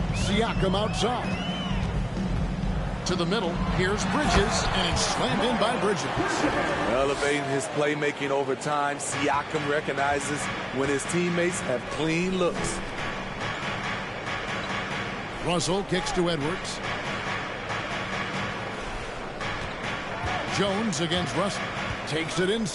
Siakam outside. To the middle. Here's Bridges, and it's slammed in by Bridges. Elevating his playmaking over time, Siakam recognizes when his teammates have clean looks. Russell kicks to Edwards. Jones against Russell. Takes it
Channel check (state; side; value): identical; both; correlation 1.00